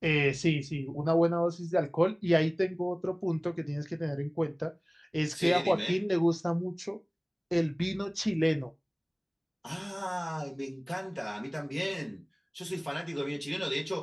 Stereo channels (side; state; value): both; identical; correlation 1.00